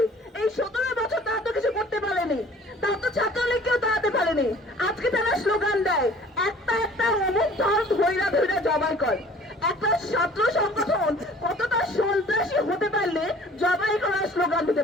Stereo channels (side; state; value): both; normal; correlation 0.50